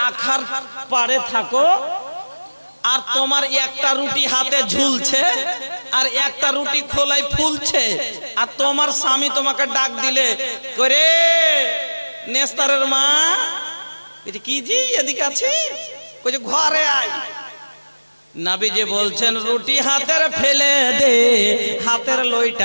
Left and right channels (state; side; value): inverted; both; correlation -1.00